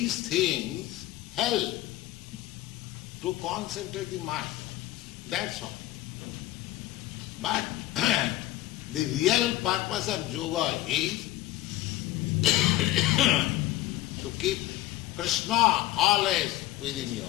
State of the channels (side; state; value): right; quieter; 15.9 dB